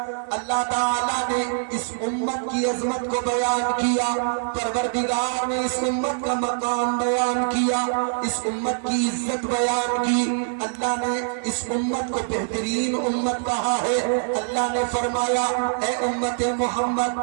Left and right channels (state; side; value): silent; left; 57 dB below the other